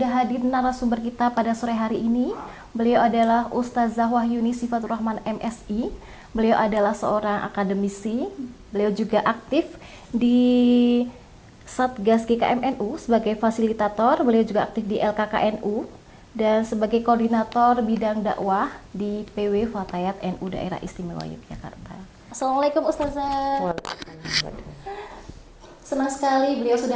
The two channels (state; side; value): identical; both; correlation 1.00